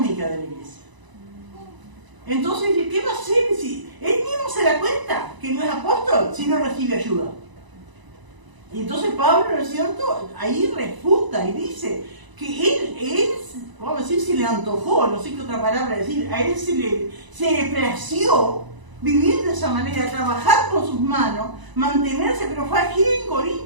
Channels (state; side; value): late; left; 1.0 ms